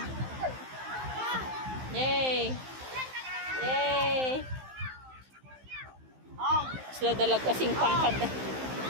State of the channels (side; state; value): left; late; 15 ms